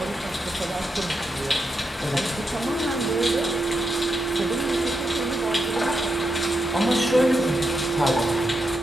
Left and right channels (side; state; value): both; normal; correlation 0.84